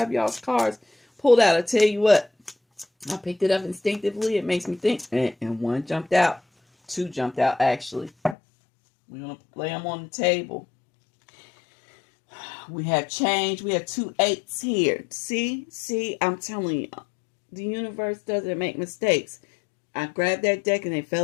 y'all's cards pulled out. I tell you what, I picked it up instinctively. It makes me think. And one jumped out. Two jumped out, actually. We're going to lay them on the table. We have change. We have 2 8s here. See, I'm telling you, the universe doesn't make mistakes. I grabbed that deck and they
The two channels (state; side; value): drops out; right; at 8.3 s